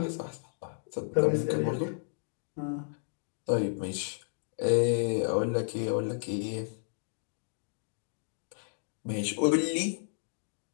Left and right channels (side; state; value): right; silent; digital silence